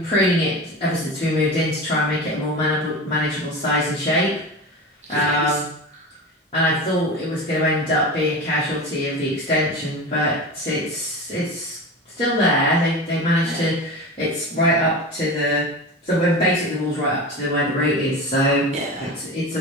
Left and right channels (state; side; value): normal; both; correlation 0.28